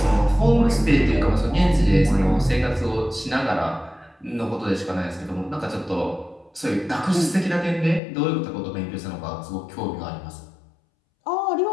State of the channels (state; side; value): drops out; right; at 8.0 s